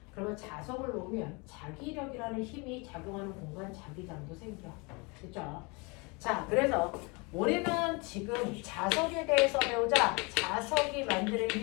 그러면 자석을 놓으면 자기력이라는 힘이 작용하는 공간, 자기장도 생겨. 그렇죠? 자, 그래서 우리는 지금 자석에 대해서 배우자. 자석이 만드는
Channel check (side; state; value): right; quieter; 29.2 dB